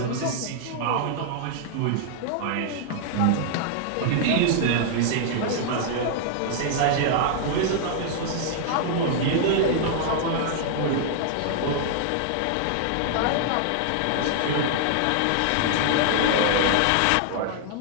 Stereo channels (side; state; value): both; different; correlation -0.01